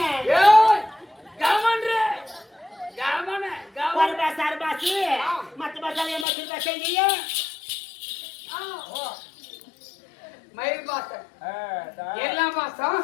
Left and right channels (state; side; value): drops out; right; at 6.2 s